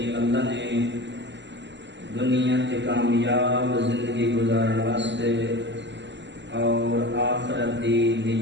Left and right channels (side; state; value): left; late; 0.52 ms